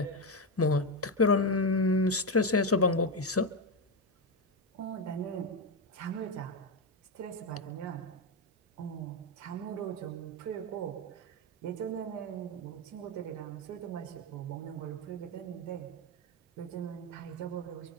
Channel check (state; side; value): normal; both; correlation 0.10